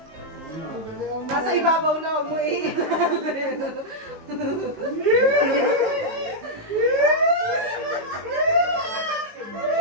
nasa ibabaw na ako eh.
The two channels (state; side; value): late; left; 19 ms